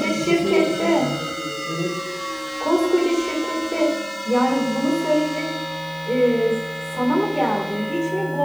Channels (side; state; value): left; noise; hiss, 25 dB below the sound